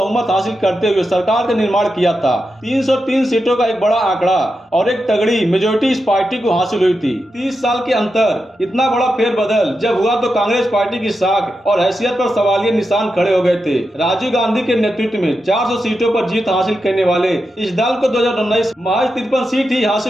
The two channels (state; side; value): normal; both; correlation 0.88